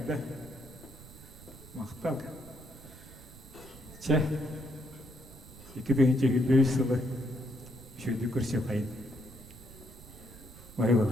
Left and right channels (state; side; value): noise; right; rumble, 18 dB below the sound